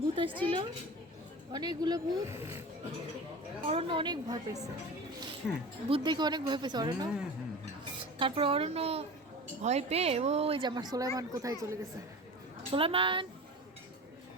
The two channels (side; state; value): both; normal; correlation 0.34